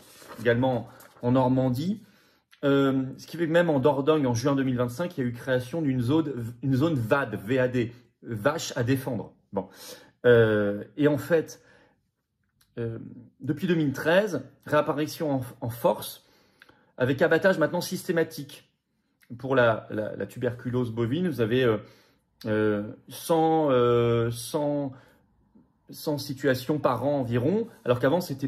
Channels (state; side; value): identical; both; correlation 1.00